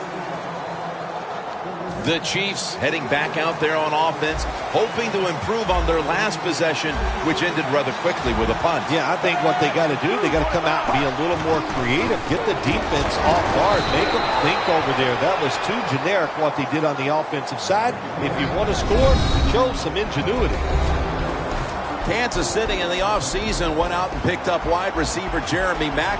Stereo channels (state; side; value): identical; both; correlation 1.00